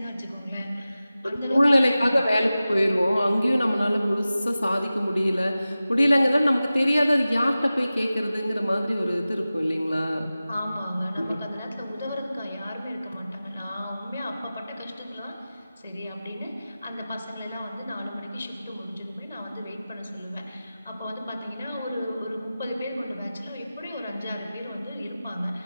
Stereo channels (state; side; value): inverted; both; correlation -0.96